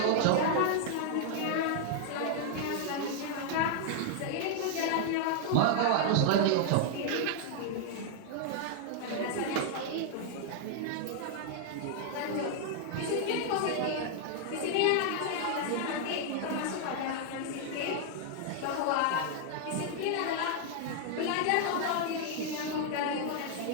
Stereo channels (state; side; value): different; both; correlation 0.00